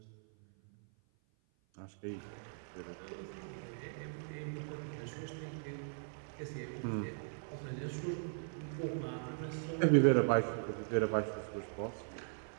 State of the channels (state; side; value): silent; left; 52 dB below the other